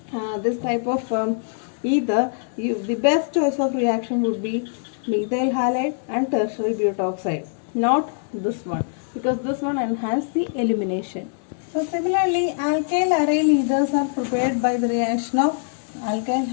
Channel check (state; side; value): silent; right; digital silence